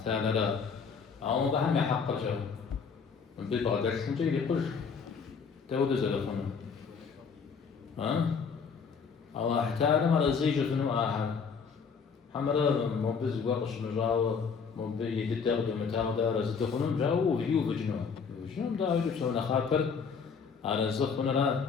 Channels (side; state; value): right; quieter; 5.8 dB